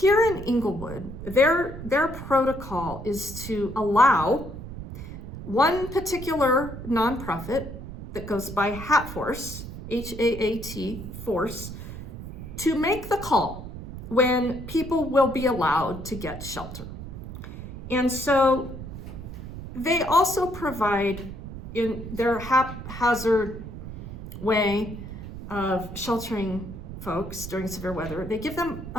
in Englewood, their protocol is to allow one particular nonprofit that goes by Hatforce, H-A-A-T, Force, to make the call when people will be allowed to get shelter. And so they also provide, in their haphazard way of sheltering folks during severe weather, they give them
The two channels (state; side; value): noise; right; rumble, 10 dB below the sound